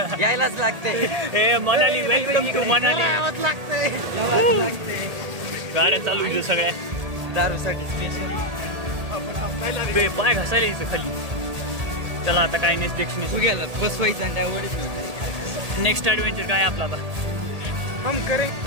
यायलाच लागतंय. हे मनाली, वेलकम टू मनाली. आवाज लागतंय. गाड्या चालू आहे सगळ्या. दारूसाठी स्पेशल. बे, पाय घासायला यायचं खाली. चला आता काय नेक्स्ट गेला बसवायचं आणि त्यावर नेक्स्ट ॲडव्हेंचर काय आपला आता? हम करे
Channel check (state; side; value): late; left; 1.8 ms